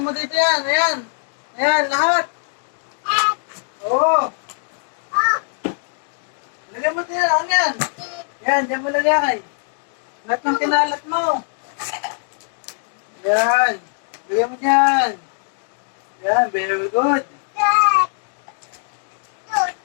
dito yan. Ayan, lahat. Oo. Lagay mo dito yan. Yan, dyan mo lagay. Lahat ng kinalat mo. Yan. Lagay mo dyan. Yan, very good.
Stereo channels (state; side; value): silent; right; digital silence